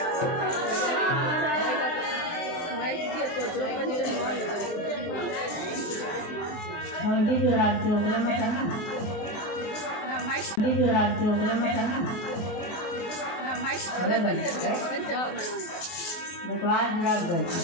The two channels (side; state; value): right; late; 24 ms